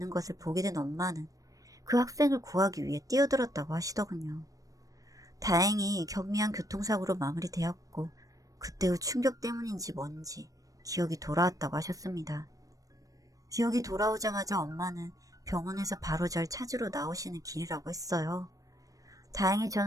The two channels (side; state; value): left; late; 0.16 ms